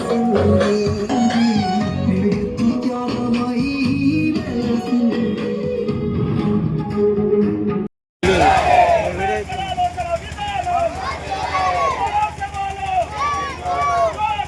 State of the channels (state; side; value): identical; both; correlation 1.00